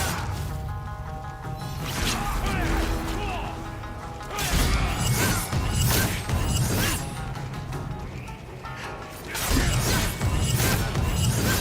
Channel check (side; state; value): both; identical; correlation 1.00